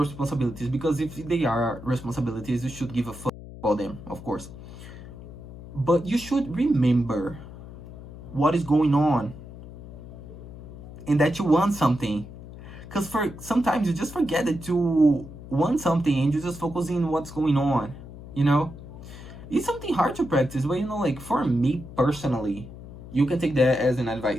because if they are responsibilities, you should give a fuck about them, of course. But you should remember what is going on and that you want something. Because sometimes you just forget that you want something and you just focus on what's going on, It's something hard to practice, but like for me personally, you can take that as an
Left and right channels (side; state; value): left; noise; hum, 15 dB below the sound